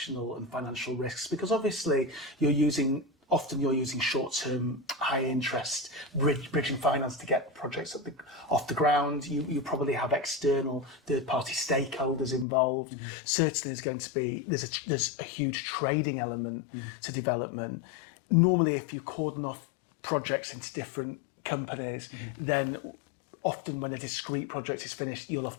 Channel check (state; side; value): drops out; right; at 12.5 s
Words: and financial risks, because obviously often you're using short-term, high-interest bridging finance to get projects off the ground. You probably have external third-party stakeholders involved. Certainly, there's a huge trading element to development. Normally, if you cordon off projects into different companies, then often when a discrete project is finished, you'll